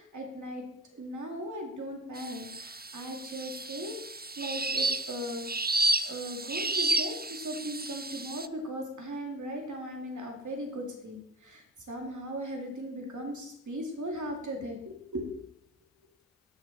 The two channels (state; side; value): normal; both; correlation 0.37